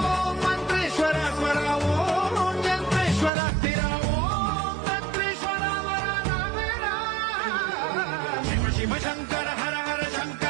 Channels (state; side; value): drops out; left; at 3.3 s